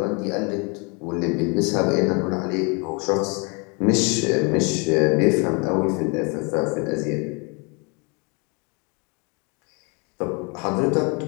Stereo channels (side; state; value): right; quieter; 32.0 dB